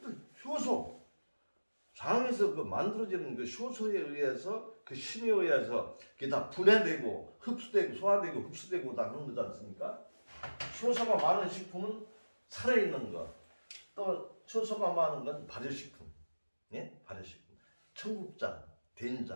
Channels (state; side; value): inverted; both; correlation -1.00